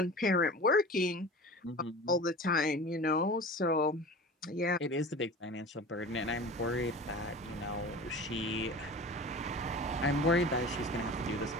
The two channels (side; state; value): both; normal; correlation 0.36